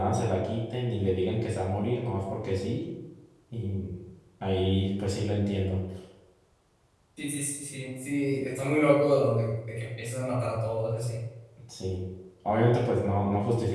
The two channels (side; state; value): both; identical; correlation 1.00